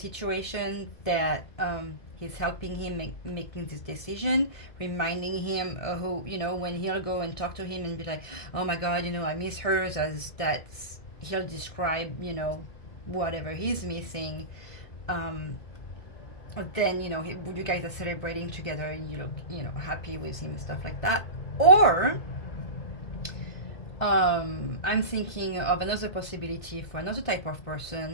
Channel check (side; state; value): right; late; 1.6 ms